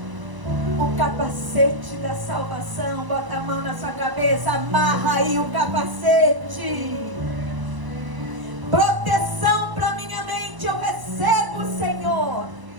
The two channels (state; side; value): late; left; 1.0 ms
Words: o capacete da salvação. Bota a mão na sua cabeça, amarra aí o capacete. Proteção para minha mente eu recebo, Senhor.